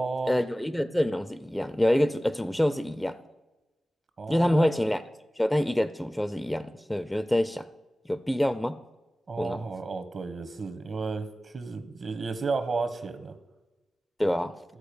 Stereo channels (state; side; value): normal; both; correlation 0.97